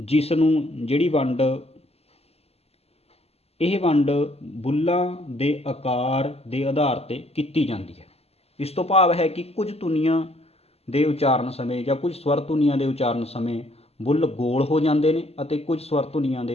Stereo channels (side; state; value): right; late; 0.29 ms